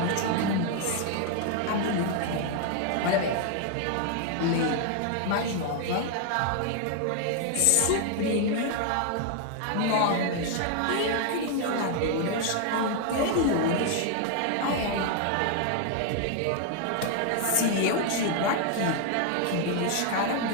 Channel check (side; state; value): both; different; correlation 0.00